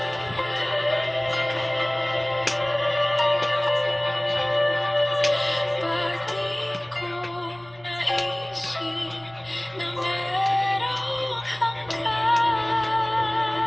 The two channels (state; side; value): noise; right; rumble, 27 dB below the sound